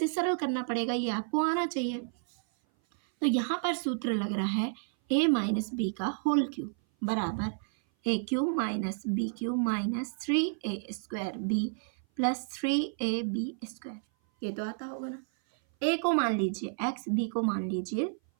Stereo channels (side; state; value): left; silent; 57 dB below the other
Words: सरल करना पड़ेगा, ये आपको आना चाहिए। तो यहाँ पर सूत्र लग रहा है a माइनस बी का होल क्यूब बराबर a cube minus B cube minus 3a square B plus 3ab square. ये तो आता होगा ना। a को मान लीजिए x, b को मान लीजिए